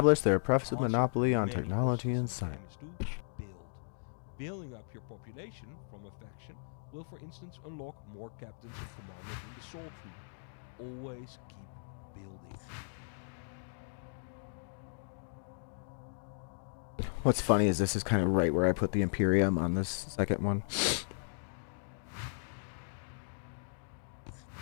their The professed answer to monopoly on many technology and questions in the science. game is to build. Building up your population from a faction will, for instance, unlock more captains and commanders in the soul tree. Always keep building. What's funny is this is kind of right where I put the Imperium on this second one.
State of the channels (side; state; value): right; silent; digital silence